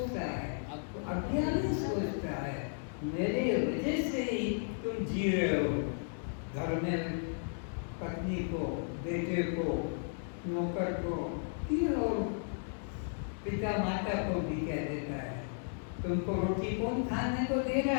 है? अज्ञानी सोचता है, मेरे वजह से ही तुम जी रहे हो। घर में पत्नी को, बेटे को, नौकर को, और पिता माता को भी कह देता है, तुमको रोटी कौन खाने को दे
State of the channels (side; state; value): right; silent; digital silence